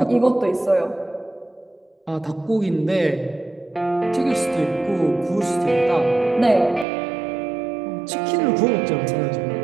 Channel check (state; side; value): drops out; left; at 6.9 s